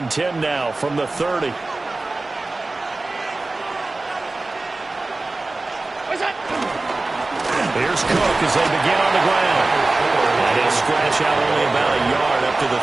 10 now from the 30. Here's Cook as they begin on the ground. And he'll scratch out only about a yard up to the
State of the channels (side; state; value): left; quieter; 3.2 dB